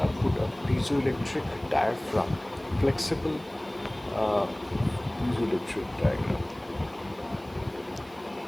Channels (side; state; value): right; noise; hiss, 27 dB below the sound